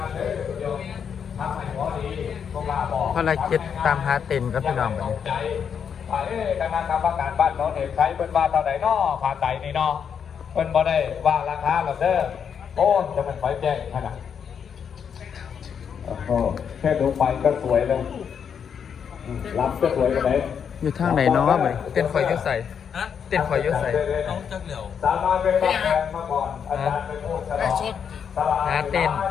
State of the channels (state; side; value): quieter; right; 7.4 dB